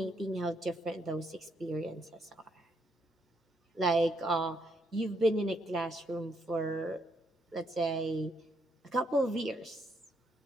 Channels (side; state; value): both; normal; correlation 0.75